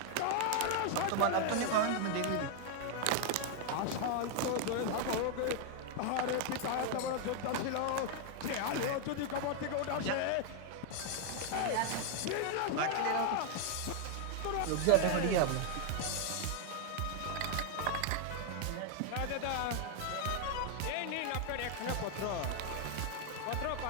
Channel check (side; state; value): both; different; correlation 0.00